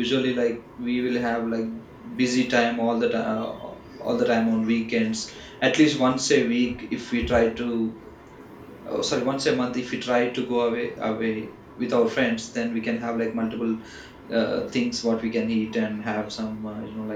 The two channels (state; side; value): identical; both; correlation 1.00